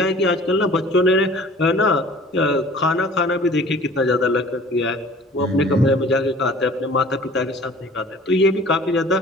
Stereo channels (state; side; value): normal; both; correlation 0.48